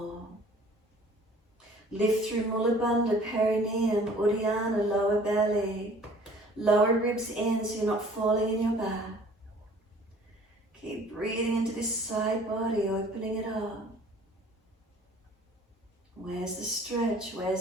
Lift through Mula Bandha, perineum, Uddiyana, lower belly. Lower ribs in so you're not falling in your back. Keep breathing into this side body, opening it up. Where's the stretch?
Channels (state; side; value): normal; both; correlation 0.52